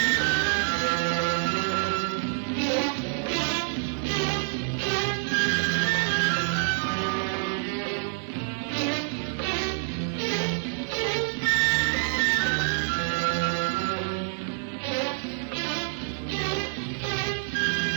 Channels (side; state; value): left; silent; digital silence